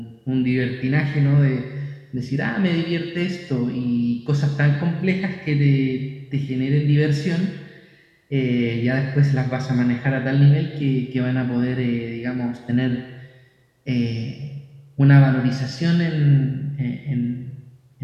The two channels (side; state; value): both; identical; correlation 1.00